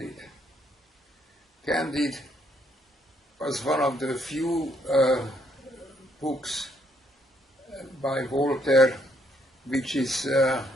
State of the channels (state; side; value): normal; both; correlation 0.71